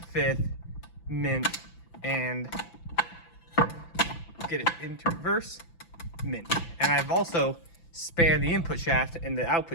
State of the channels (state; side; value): late; right; 5.9 ms